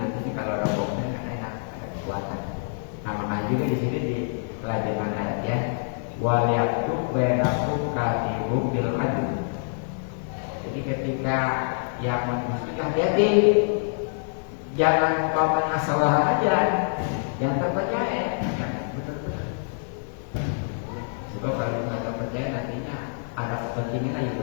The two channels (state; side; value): silent; right; 58 dB below the other